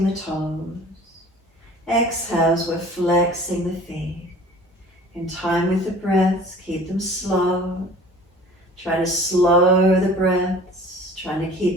the toes. Exhales, we're flexing the feet. In time with the breaths, keep them slow. Try to slow the breaths. Trying to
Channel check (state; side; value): normal; both; correlation 0.46